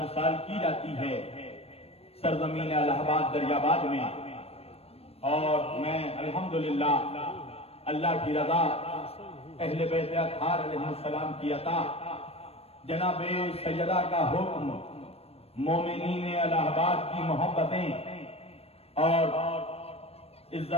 سال کی جاتی ہے سرزمین الہ آباد دریاباد میں، اور میں الحمدللہ اللہ کی رضا اہل بیت اطہار علیہ السلام کی عطا جناب سیدہ کا حکم مومنین الہ آباد کی محبتیں اور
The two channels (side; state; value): right; late; 0.29 ms